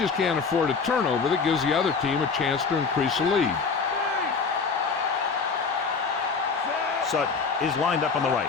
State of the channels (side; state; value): right; quieter; 5.1 dB